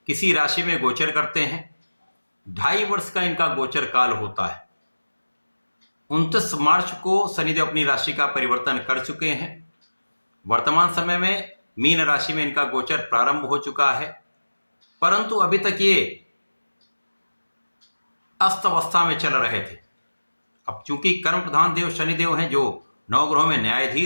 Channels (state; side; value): inverted; both; correlation -1.00